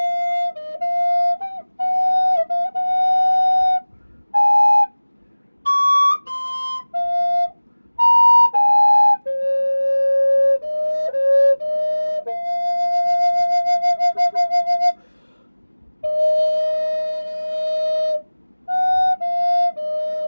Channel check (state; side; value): inverted; both; correlation -1.00